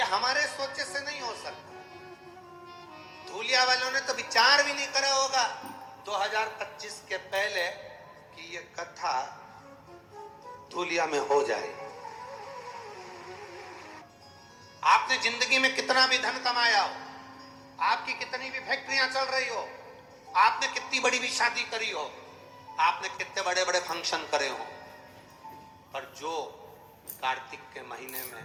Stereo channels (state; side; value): identical; both; correlation 1.00